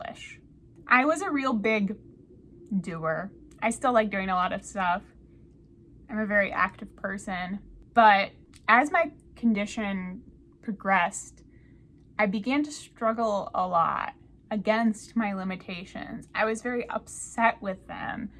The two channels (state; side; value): identical; both; correlation 1.00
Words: I was a real big doer. I still like doing a lot of stuff. I'm a very active person. But as my condition progressed, I began to struggle a lot against my limitations. I was very upset with them.